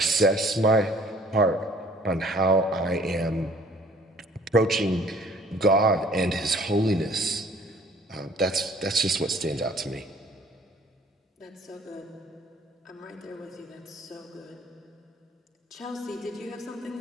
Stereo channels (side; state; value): both; normal; correlation 0.55